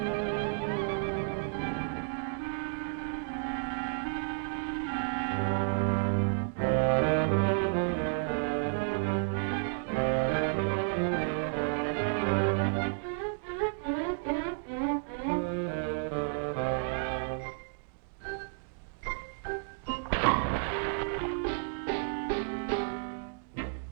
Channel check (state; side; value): silent; left; digital silence